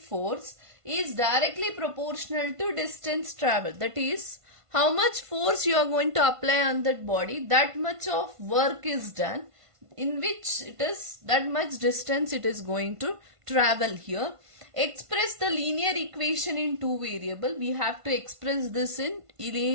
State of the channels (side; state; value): left; late; 1.5 ms